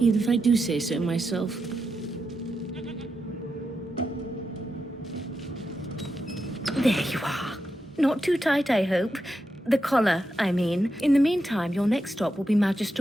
even if I do say so myself. There you are. Not too tight, I hope. The collar, I mean. In the meantime, your next stop will be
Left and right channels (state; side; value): normal; both; correlation 0.86